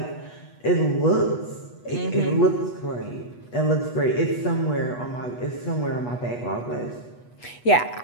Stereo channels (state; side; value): late; right; 8.2 ms